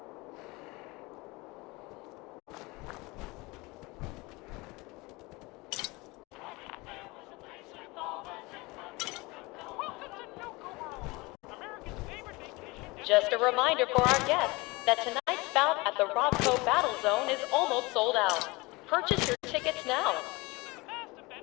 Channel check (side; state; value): right; quieter; 24.0 dB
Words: Just a reminder for our guests that tonight's bout at the Robco Battle Zone is almost sold out. Purchase your tickets now. The past have